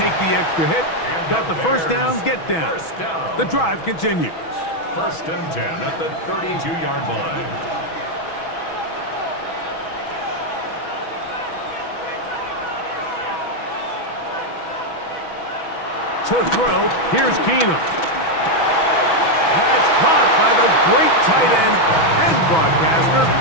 the extra hit. Got the 1st down, get down. The drive continues. 1st and 10 at the 32-yard line. To throw, here's Keenum. That's caught by the great tight end and broadcaster,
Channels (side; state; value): right; late; 6.1 ms